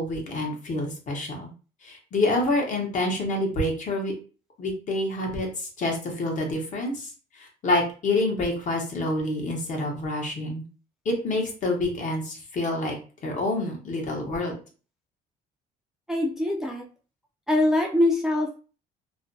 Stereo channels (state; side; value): normal; both; correlation 0.46